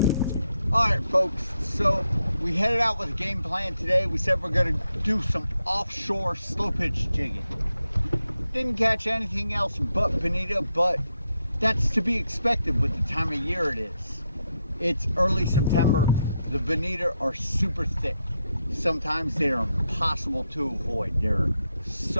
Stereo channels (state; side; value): inverted; both; correlation -0.83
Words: All right, folks, so we headed out with a game plan today. We said we're going to do some offshore slow pitch jigging. Didn't catch anything else but bonito, but that's to be expected with the time of year it is. It's early September. The bonito are super thick. Sometimes they are impossible to avoid. They're